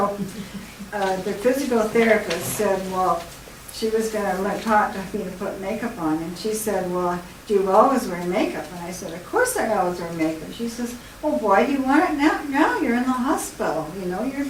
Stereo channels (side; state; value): both; identical; correlation 1.00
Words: the physical therapist said, well, she was going to talk to me to put makeup on, and she said, well, do you always wear makeup? And I said, of course I always wear makeup. She says, well, why do you want it now? Now you're in the hospital. You know,